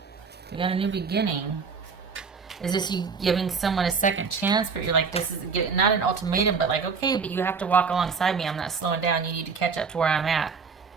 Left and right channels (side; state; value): left; quieter; 5.4 dB